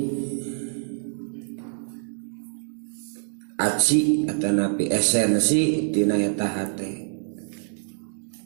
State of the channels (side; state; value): left; silent; 61 dB below the other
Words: aci atau napi esensi dina eta hate.